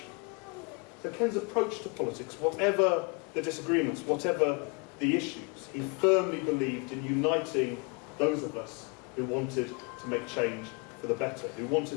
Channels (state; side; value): quieter; right; 32.7 dB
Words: So Ken's approach to politics, whatever the disagreements, whatever the issues, he firmly believed in uniting those of us who wanted to make change for the better, who